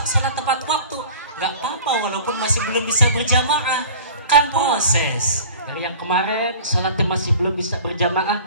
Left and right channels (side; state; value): both; inverted; correlation -0.43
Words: sholat tepat waktu. Gak apa-apa walaupun masih belum bisa berjamaah, kan proses. Dari yang kemarin sholatnya masih belum bisa berjamaah,